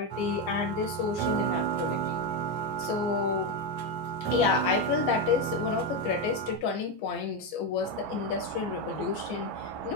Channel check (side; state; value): right; late; 14 ms